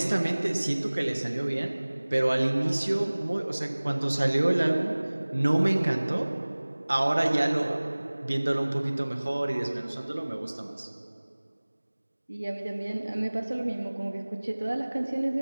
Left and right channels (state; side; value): inverted; both; correlation -1.00